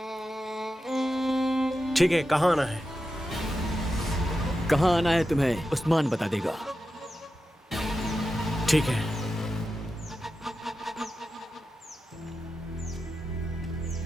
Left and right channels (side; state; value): both; normal; correlation 0.90